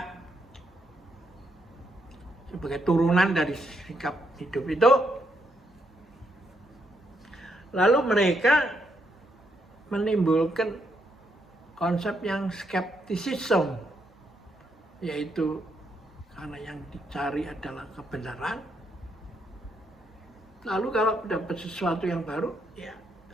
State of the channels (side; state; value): both; normal; correlation 0.77